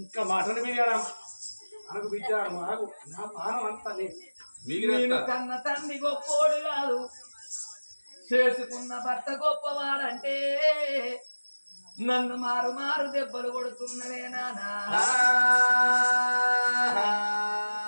ఇంకా మటన్ బిర్యానీ అనకు బిడ్డ నాకు నా పానం అంతా నేను కన్న తండ్రి గొప్పోడు కాదు. చేసుకున్న భర్త గొప్పవాడంటే నన్ను మారు మారు దెబ్బలు కొడుతున్నవే నానా.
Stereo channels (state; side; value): inverted; both; correlation -1.00